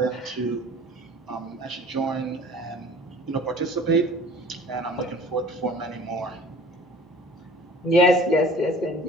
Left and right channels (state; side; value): normal; both; correlation 0.46